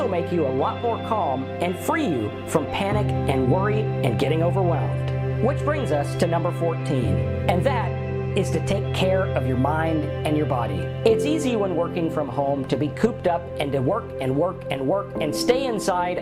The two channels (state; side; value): identical; both; correlation 1.00